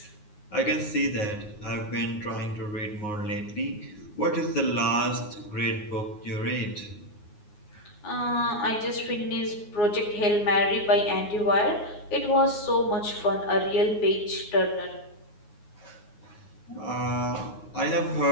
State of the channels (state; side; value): late; right; 9.5 ms